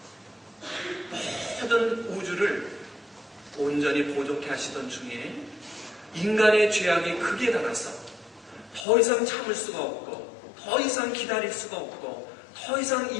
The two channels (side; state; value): right; drops out; at 8.8 s